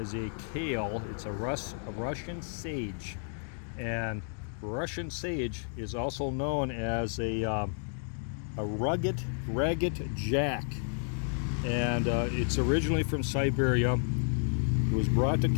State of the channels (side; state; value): right; silent; 57 dB below the other